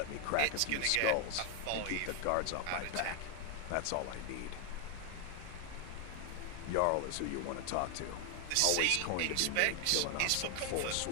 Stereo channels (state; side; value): different; both; correlation 0.00